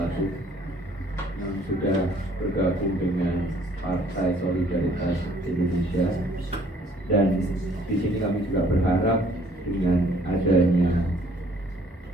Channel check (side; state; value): both; normal; correlation 0.60